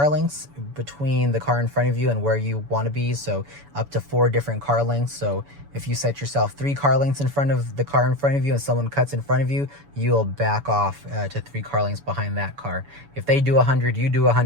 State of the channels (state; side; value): late; left; 7.0 ms